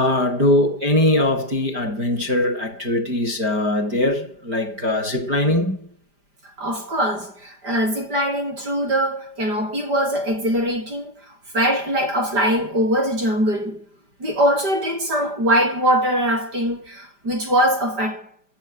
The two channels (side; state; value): left; late; 5.0 ms